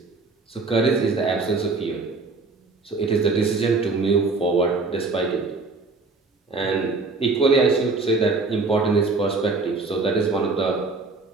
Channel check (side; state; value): left; quieter; 3.8 dB